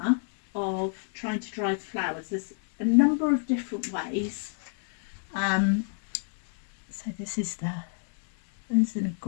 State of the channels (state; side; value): silent; right; digital silence